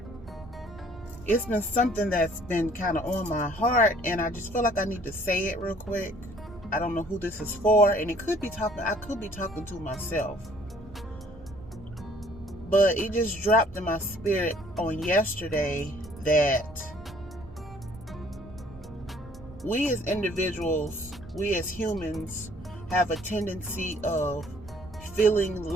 it's been something that's been kind of on my heart, and I just feel like I need to say it real quick. I don't know who this is for, and I could be talking to myself, but it just dropped in my spirit on yesterday that we as individuals, we as humans, have a tendency of feeling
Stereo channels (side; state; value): right; noise; rumble, 19 dB below the sound